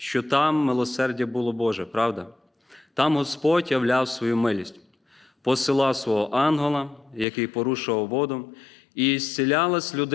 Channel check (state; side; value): drops out; right; at 7.2 s